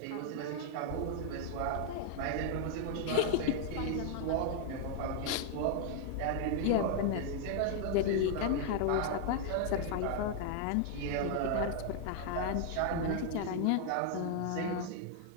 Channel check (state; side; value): different; both; correlation 0.00